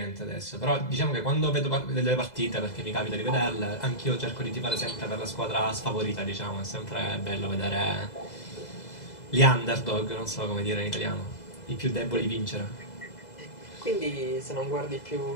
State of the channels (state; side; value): late; right; 2.0 ms